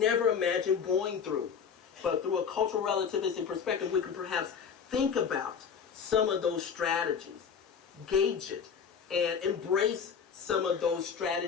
imagine going through. But through a cultural relativistic perspective, we can perhaps think about some of those strategies, gauge it, and embrace some of those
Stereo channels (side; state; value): right; quieter; 6.8 dB